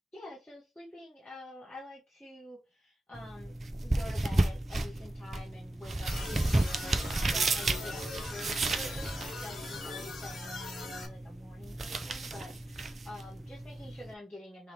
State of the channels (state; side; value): normal; both; correlation 0.91